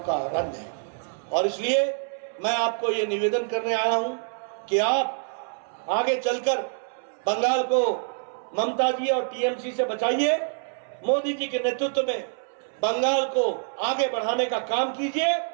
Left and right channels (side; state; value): left; silent; 61 dB below the other